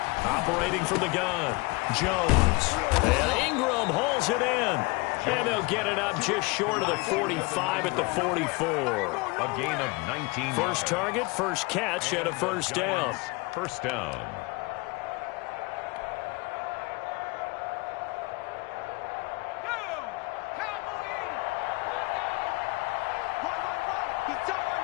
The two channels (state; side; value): quieter; right; 25.0 dB